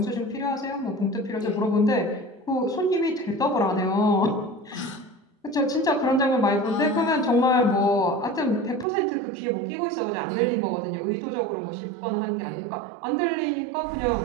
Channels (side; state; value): left; drops out; at 8.8 s